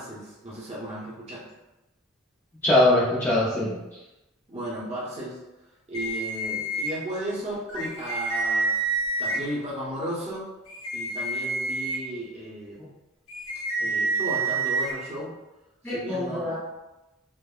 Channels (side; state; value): both; normal; correlation 0.33